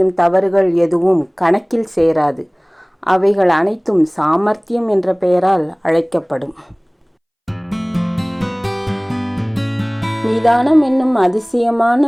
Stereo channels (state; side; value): identical; both; correlation 1.00